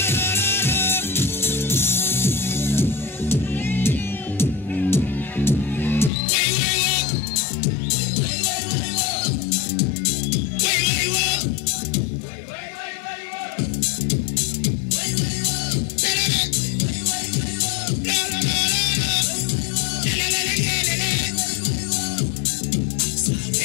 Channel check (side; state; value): right; drops out; at 6.1 s